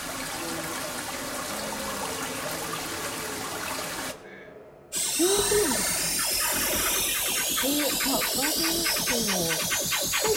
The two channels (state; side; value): identical; both; correlation 1.00